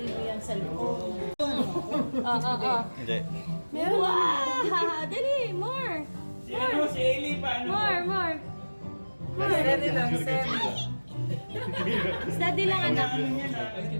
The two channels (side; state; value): both; inverted; correlation -1.00